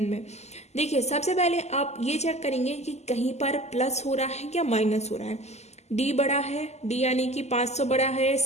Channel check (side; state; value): right; late; 0.32 ms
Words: देखिए सबसे पहले आप ये चेक करेंगे कि कहीं पर प्लस हो रहा है या माइनस हो रहा है। D बड़ा है, D यानी कि 500 बड़ा है,